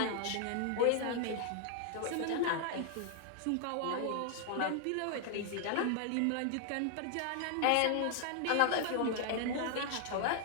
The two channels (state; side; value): different; both; correlation 0.00